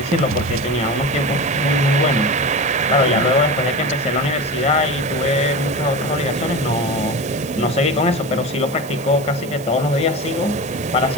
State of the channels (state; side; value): noise; right; hiss, 20 dB below the sound